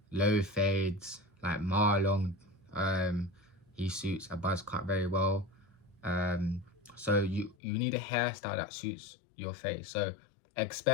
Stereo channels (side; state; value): right; drops out; at 7.6 s